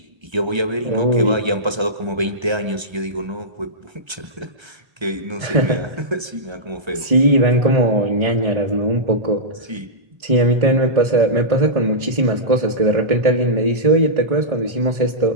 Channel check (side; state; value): left; late; 1.3 ms